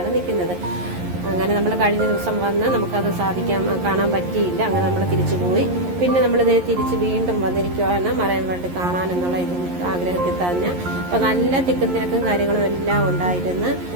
നിൽക്കുന്നത്. അങ്ങനെ നമ്മൾ കഴിഞ്ഞ ദിവസം വന്ന് നമുക്കത് കാണാൻ പറ്റിയില്ല. അങ്ങനെ നമ്മൾ തിരിച്ചു പോയി. പിന്നെ നമ്മളിത് തിരിച്ച് വീണ്ടും വന്നിരിക്കുവാണ് മറൈൻ വേൾഡ് കാണാനെന്നുള്ള ആഗ്രഹത്തിൽ തന്നെ. അപ്പോൾ നല്ല തിക്കും തിരക്കും കാര്യങ്ങളും എല്ലാം ഉണ്ടായിരുന്നു.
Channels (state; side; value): late; left; 11 ms